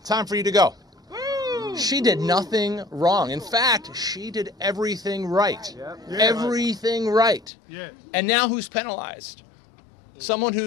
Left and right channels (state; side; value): drops out; right; at 7.5 s